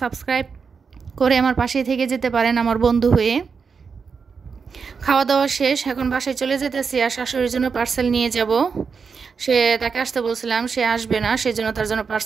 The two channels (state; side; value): quieter; left; 5.6 dB